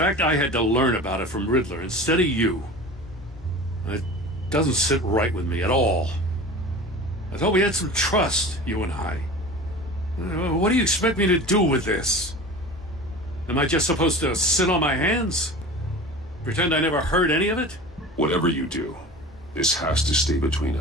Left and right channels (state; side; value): normal; both; correlation 0.36